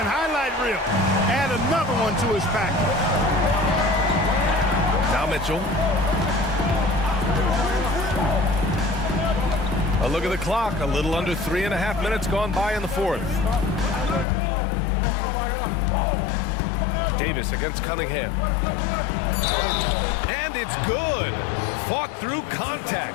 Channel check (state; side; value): drops out; right; at 14.2 s